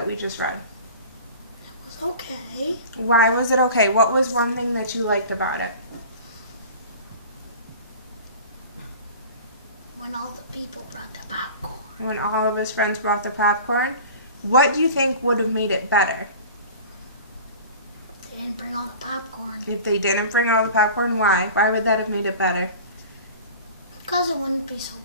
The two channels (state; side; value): inverted; both; correlation -0.39